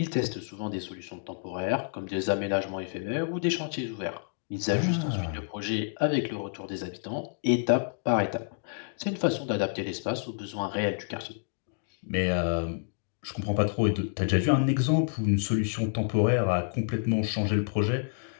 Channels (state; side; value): silent; right; digital silence